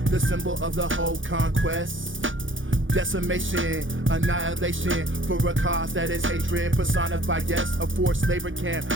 the symbol of the whole conquest. decimation, annihilation, for a cause that is hatred, personified, yes, a forced labor camp,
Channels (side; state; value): left; late; 0.57 ms